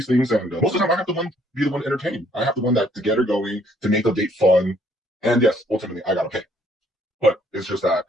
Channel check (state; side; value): normal; both; correlation 0.65